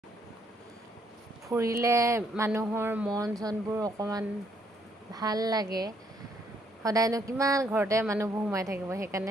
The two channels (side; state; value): both; normal; correlation 0.70